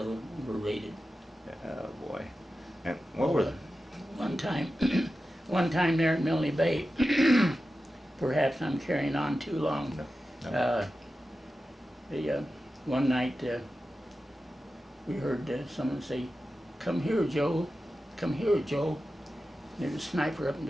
were raided. Oh boy. And what were? One time there at Milne Bay. Perhaps I'm carrying on too long. No. One night we heard someone say, "Come here, Joe. Come here, Joe." There's a sniper up in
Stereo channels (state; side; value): normal; both; correlation 0.93